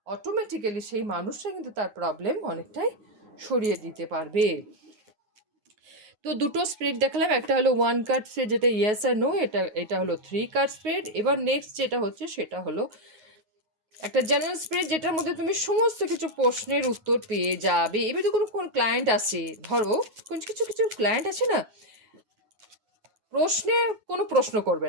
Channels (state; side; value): late; left; 9.3 ms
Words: অটোমেটিক্যালি সেই মানুষটা কিন্তু তার প্রবলেম অনেকটাই সরিয়ে দিতে পারবে। তো দুটো স্প্রেড দেখালাম, একটা হলো 1 কার্ড স্প্রেড যেটা ইয়েস আর নো, এটা হলো 3 কার্ড স্প্রেড। এবার নেক্সট যেটা হচ্ছে সেটা হলো একটা জেনারেল স্প্রেড, যেটার মধ্যে তুমি সমস্ত কিছু প্রশ্নের উত্তর পেয়ে যাবে। এবার তো কোনো ক্লায়েন্ট আছে, ধরো কিছু কিছু ক্লায়েন্ট আছে না, কোনো প্রশ্ন করবে